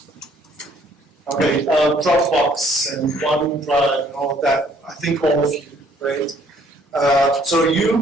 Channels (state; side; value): normal; both; correlation 0.62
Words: Okay, Dropbox and OneDrive and all of that. I think all of you, right? So